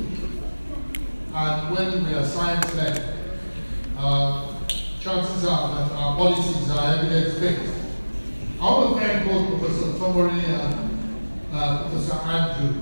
And when we are science-led, chances are that our policies are evidence-based. I want to thank both Professor Tomori and Professor Andrew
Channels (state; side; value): inverted; both; correlation -1.00